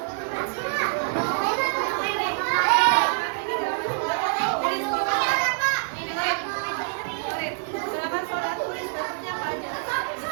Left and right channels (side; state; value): left; silent; 61 dB below the other